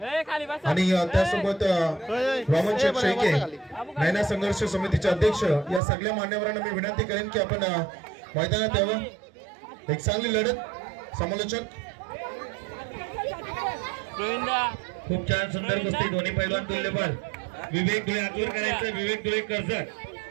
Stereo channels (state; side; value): drops out; left; at 5.8 s